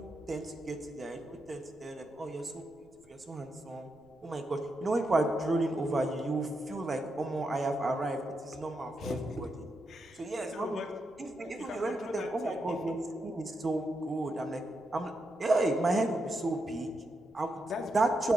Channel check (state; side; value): noise; right; rumble, 30 dB below the sound